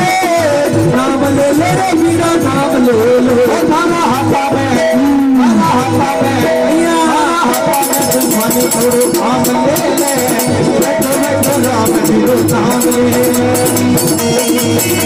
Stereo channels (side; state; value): both; identical; correlation 1.00